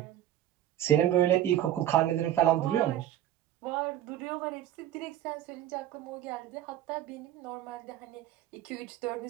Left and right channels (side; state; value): left; quieter; 12.3 dB